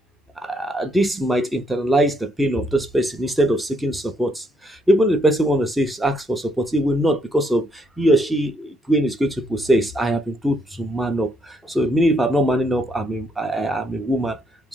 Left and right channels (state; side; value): normal; both; correlation 0.73